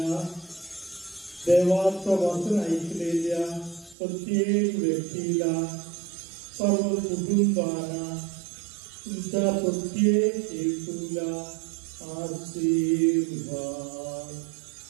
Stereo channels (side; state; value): left; drops out; at 4.0 s